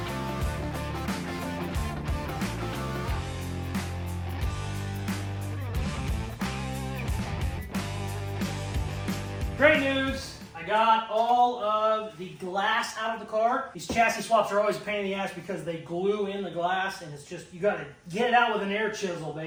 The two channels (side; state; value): both; identical; correlation 1.00